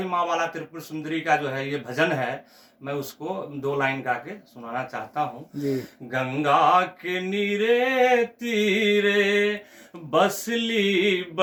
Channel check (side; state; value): both; identical; correlation 1.00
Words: माँ वाला त्रिपुर सुंदरी का जो है ये भजन है, मैं उसको 2 लाइन गा के सुनाना चाहता हूँ। गंगा के नीरे तीरे बसली